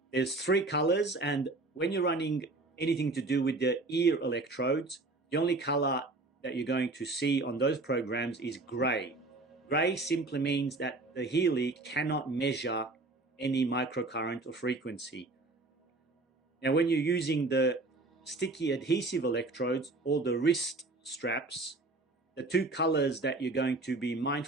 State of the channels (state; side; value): quieter; left; 3.2 dB